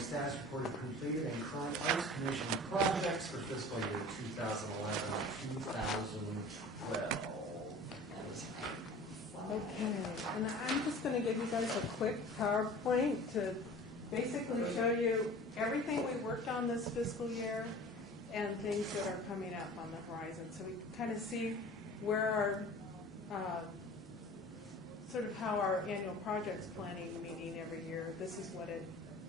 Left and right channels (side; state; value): both; normal; correlation 0.41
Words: report of completed and current Arts Commission projects for fiscal year 2011-2012. Okay, and I'm just going to give you guys a quick PowerPoint to basically show you everything we worked on this fiscal year and things that are coming up on the horizon. So we can kind of see where our sort of how our annual projects planning meeting every year, this is what it